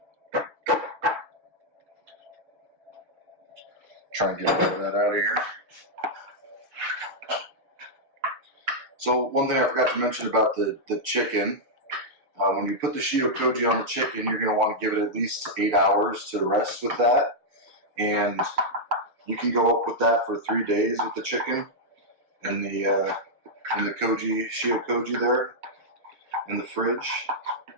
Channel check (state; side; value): late; left; 6.7 ms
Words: Try and get all of that out of here. So one thing I forgot to mention about the chicken, when you put the Shio Koji on the chicken, you're going to want to give it at least 8 hours to rest with that, and you can go up with that for 3 days with the chicken in the koji, Shio Koji there in the fridge.